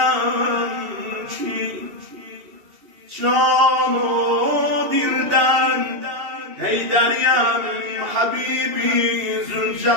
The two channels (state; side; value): late; left; 2.8 ms